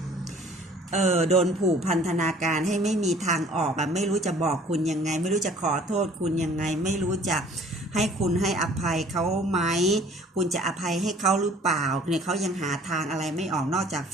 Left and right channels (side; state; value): both; normal; correlation 0.53